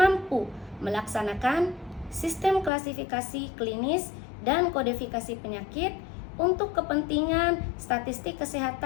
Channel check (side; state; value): right; drops out; at 2.7 s